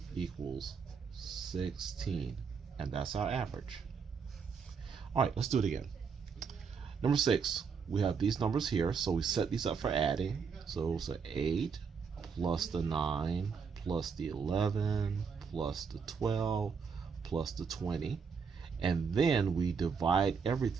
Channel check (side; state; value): left; quieter; 5.9 dB